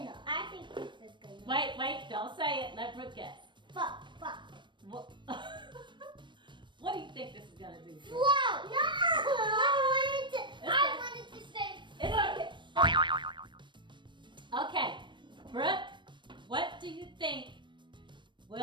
I think this is gonna. Wait, don't say it. Let Brooke guess. Fuck. What, what do you think this is gonna do? Float. No. I wanted to say. It's okay. Okay, Brooke, what do you think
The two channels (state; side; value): late; left; 0.22 ms